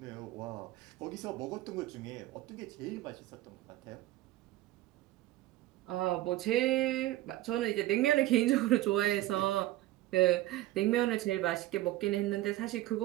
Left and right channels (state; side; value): quieter; left; 15.7 dB